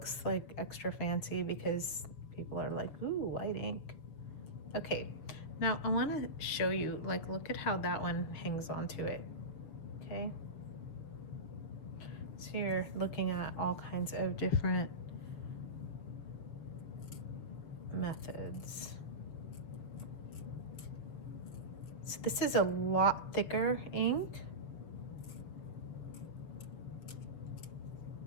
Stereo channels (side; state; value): right; late; 7.0 ms